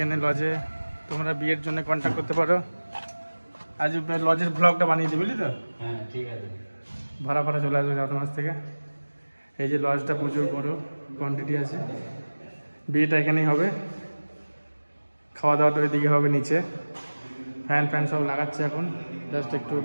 লজে তোমরা বিয়ের জন্য কন্ট্যাক্ট করতে পারো। আজ লজের ব্লগটা বানিয়ে দিই, বুঝলি তো? হ্যাঁ ঠিক আছে। ভাড়া ভাড়া চলে আসবে চার মাস থেকে। এই যে লজটা প্রচুর বড়, কোয়ান্টিটি আছে। বিয়েটা এখানেই হবে, খাওয়া দাওয়াটা ওইদিকে হবে নিচে। ফ্যান সব লাগাচ্ছে এখন, জাস্ট একটু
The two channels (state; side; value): inverted; both; correlation -1.00